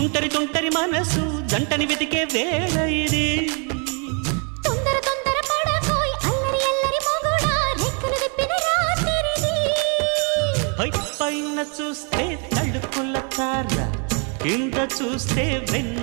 తుంటరి మనసు జంటని వెతికే వేళ ఇది తొందర తొందర పడకోయ్ అల్లరి అల్లరి మొగుడా రెక్కలు విప్పిన రాత్రిది పైన చూస్తే తడుకుల తార కింద చూస్తే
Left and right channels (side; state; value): left; quieter; 37.6 dB